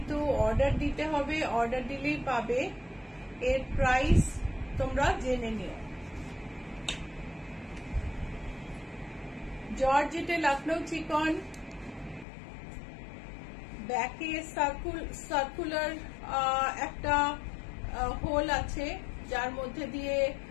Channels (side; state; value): right; drops out; at 12.2 s